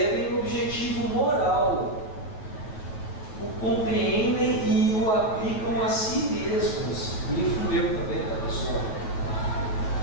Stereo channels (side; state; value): right; late; 9.4 ms